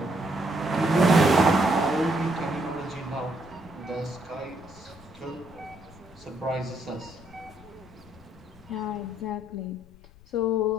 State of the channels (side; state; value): left; noise; rumble, 24 dB below the sound